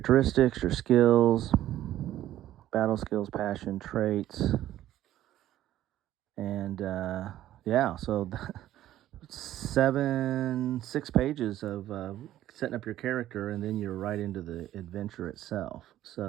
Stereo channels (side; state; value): left; quieter; 13.2 dB